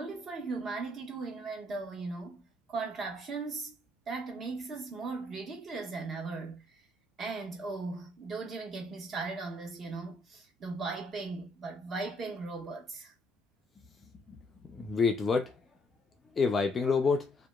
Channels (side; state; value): both; normal; correlation 0.70